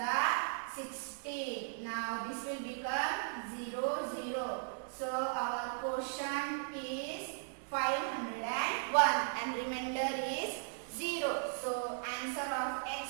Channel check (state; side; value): silent; left; digital silence